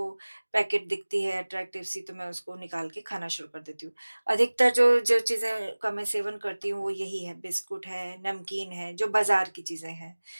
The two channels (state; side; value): inverted; both; correlation -1.00